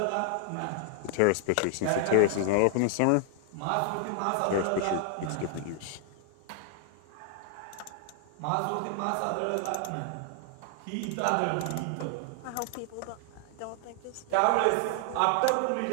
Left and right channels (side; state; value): both; different; correlation 0.00